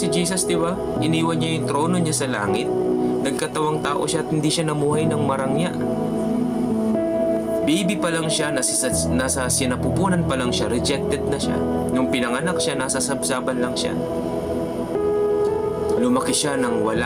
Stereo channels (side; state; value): both; identical; correlation 1.00